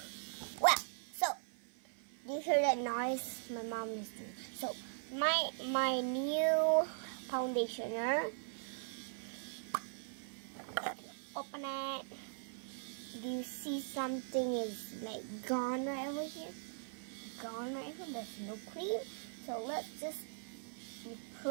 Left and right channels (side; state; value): left; silent; 51 dB below the other